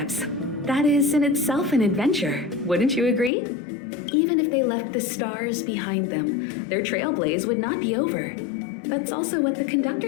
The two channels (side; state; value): right; drops out; at 3.3 s